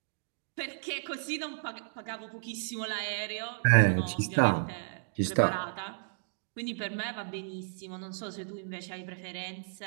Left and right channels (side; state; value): left; silent; digital silence